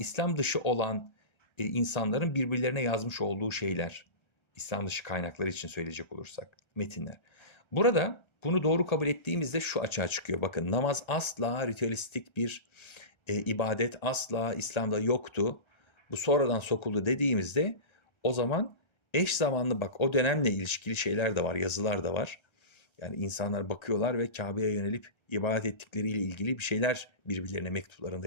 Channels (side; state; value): right; late; 1.3 ms